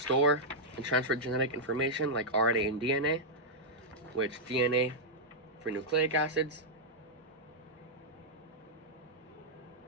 and transfer genetic information like RNA and DNA, which DNA for nucleic acids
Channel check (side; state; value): both; normal; correlation -0.06